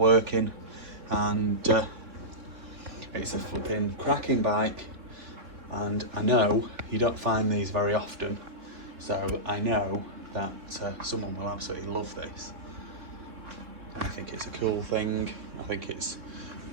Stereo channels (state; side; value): late; left; 3.6 ms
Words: and it's a flipping cracking bike. And I know you don't find these very often, so I know that someone will absolutely love this. I think it's a cool thing. I think it's